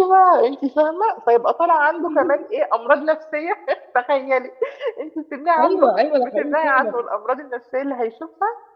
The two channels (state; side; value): identical; both; correlation 1.00